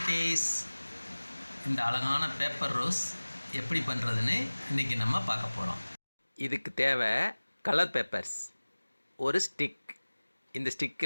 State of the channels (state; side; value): inverted; both; correlation -1.00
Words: இந்த அழகான பேப்பர் ரோஸ் எப்படி பண்ணுறதுன்னு இன்றைக்கி நம்ம பார்க்க போகிறோம். இதுக்கு தேவை கலர் பேப்பர்ஸ், ஒரு ஸ்டிக். இந்த